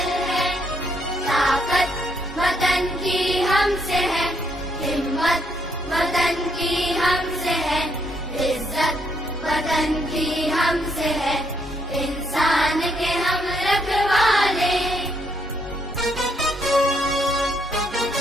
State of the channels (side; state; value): both; normal; correlation 0.73